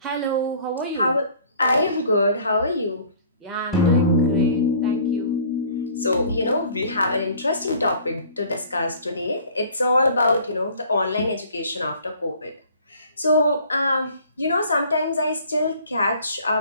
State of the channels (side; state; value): both; inverted; correlation -0.51